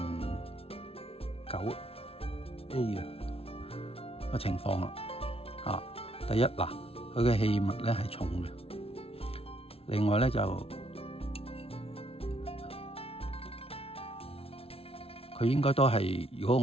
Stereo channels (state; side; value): late; right; 0.28 ms